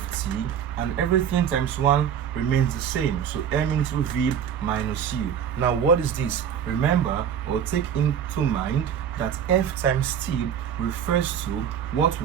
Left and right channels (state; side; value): quieter; left; 8.5 dB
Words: and everything times 1 remains the same. So m into v minus u. Now what is this? Remember, or take into mind that f times t refers to what